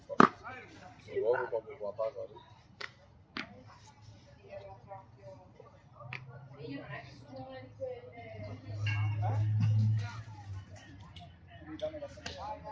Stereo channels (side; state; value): both; identical; correlation 1.00